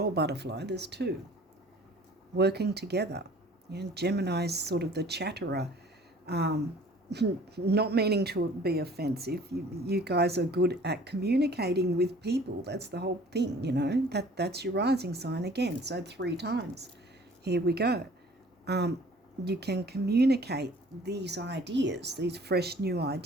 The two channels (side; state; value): both; normal; correlation 0.51